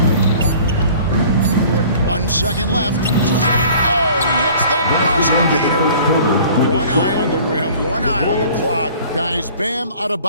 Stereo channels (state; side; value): inverted; both; correlation -0.49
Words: 1 second left. Oh, he hits the buzzer beater. One eye on the rim, one eye on the clock. Guys, Bam